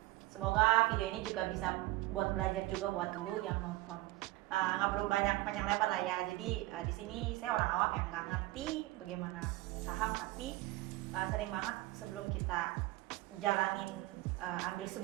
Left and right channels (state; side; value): quieter; left; 19.1 dB